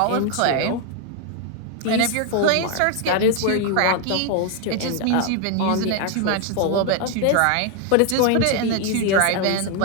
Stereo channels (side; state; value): both; different; correlation 0.01